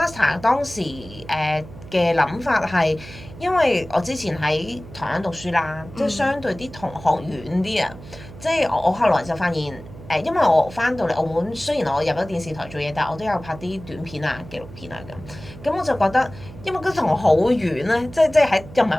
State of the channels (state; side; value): noise; right; hum, 16 dB below the sound